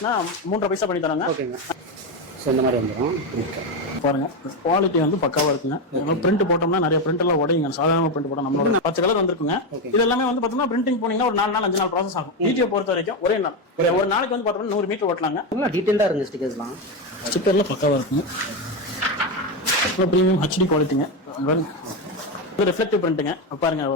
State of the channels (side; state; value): both; normal; correlation 0.11